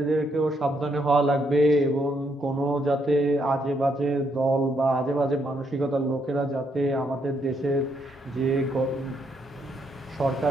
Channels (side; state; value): both; normal; correlation 0.75